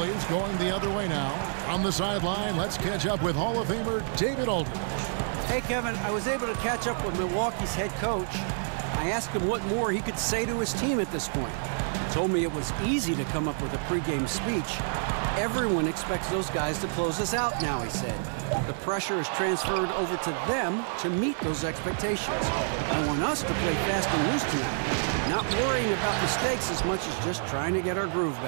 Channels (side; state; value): left; silent; 59 dB below the other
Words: going the other way now. On the sideline, let's catch up with Hall of Famer David Aldridge. Hey, Kevin, I was able to catch up with Milwaukee's head coach. I asked him what more he could say to his team at this point. He told me it was easy to come up with a pregame speech. Everyone expects those guys to close us out now, he said. The pressure is transferred over to them to meet those expectations. I want us to play fast and loose tonight, not worrying about mistakes as much as just trying to get our groove